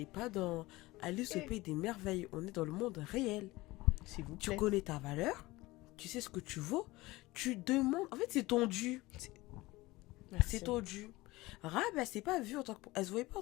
pas dans Alice au pays des merveilles. On est dans le monde réel. S'il vous Tu plaît. connais ta valeur, tu sais ce que tu vaux, tu demandes. En fait, c'est ton dû. Merci. C'est ton dû. Rab, elle s'est pas vue en tant que. Elle se voyait pas en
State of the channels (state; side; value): quieter; right; 20.1 dB